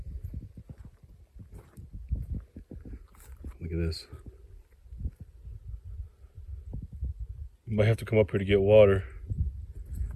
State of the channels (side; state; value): both; identical; correlation 1.00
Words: Look at this. You might have to come up here to get water.